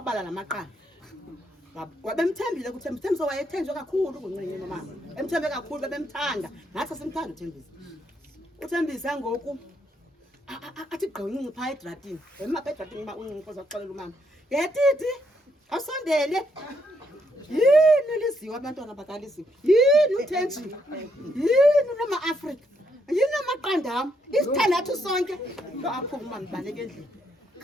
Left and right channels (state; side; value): normal; both; correlation 0.75